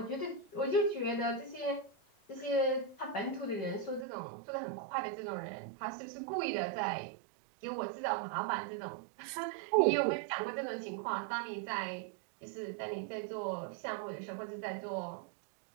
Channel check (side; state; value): left; drops out; at 4.0 s